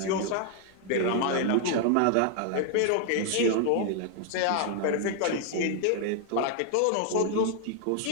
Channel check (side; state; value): both; different; correlation 0.00